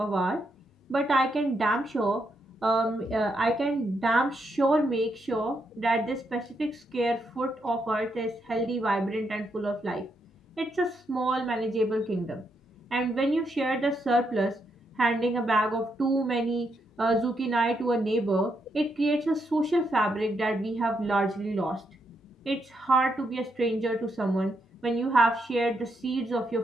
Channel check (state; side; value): normal; both; correlation 0.79